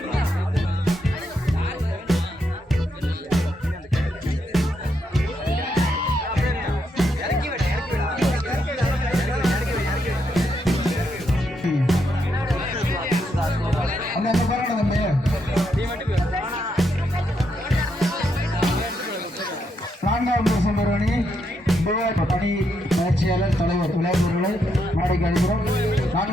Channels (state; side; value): normal; both; correlation 0.79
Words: பணி பயிற்சியாளர் தலைவர் விளையாட்டுகளை நாளைக்கு அழைக்கிறோம்.